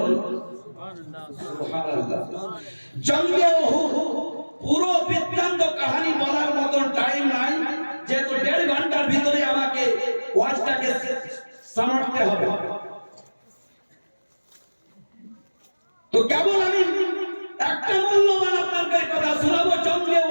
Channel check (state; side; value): inverted; both; correlation -1.00